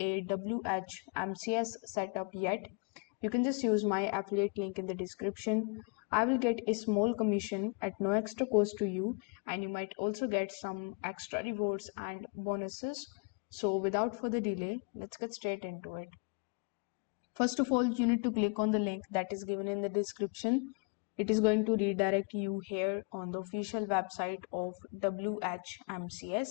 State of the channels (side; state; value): right; quieter; 35.6 dB